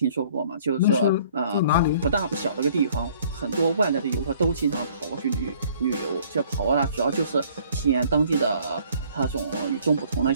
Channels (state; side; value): inverted; both; correlation -0.58